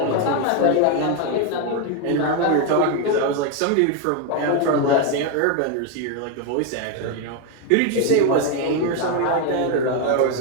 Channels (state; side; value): different; both; correlation 0.01